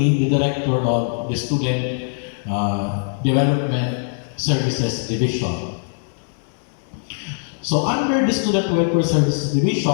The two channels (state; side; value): silent; right; 65 dB below the other